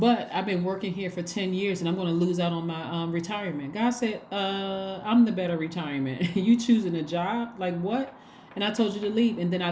I've been working here for 10 years and I'm going to lose out on my retirement. God said, I'm the better retirement. You choosing a job? Like what? And I told you to leave. And then I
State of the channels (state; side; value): identical; both; correlation 1.00